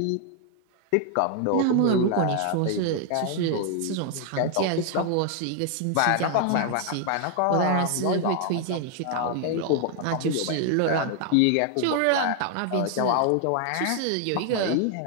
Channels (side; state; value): both; different; correlation 0.00